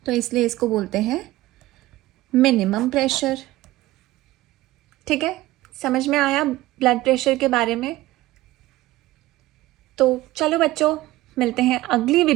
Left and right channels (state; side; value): quieter; left; 17.3 dB